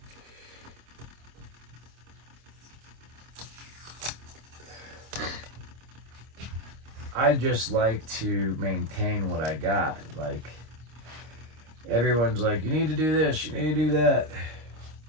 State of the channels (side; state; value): left; late; 26 ms